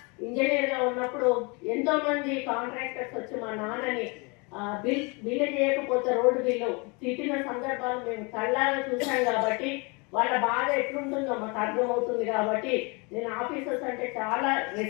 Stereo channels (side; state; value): right; quieter; 29.8 dB